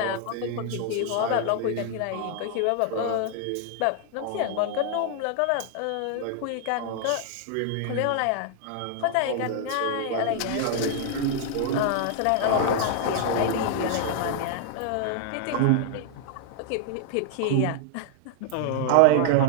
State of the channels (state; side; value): different; both; correlation 0.00